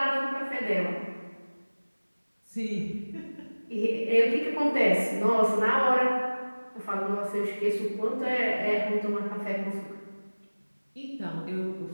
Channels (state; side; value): inverted; both; correlation -1.00